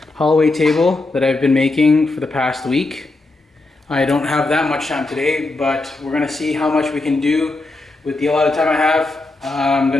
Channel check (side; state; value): right; quieter; 3.1 dB